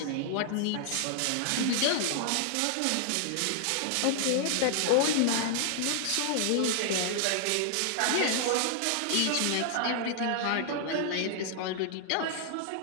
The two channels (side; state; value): both; different; correlation 0.00